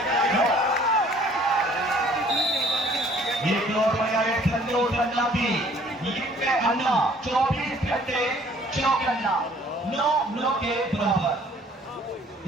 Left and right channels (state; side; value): normal; both; correlation 0.56